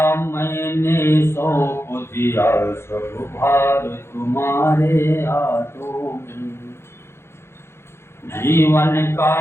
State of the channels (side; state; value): right; late; 0.12 ms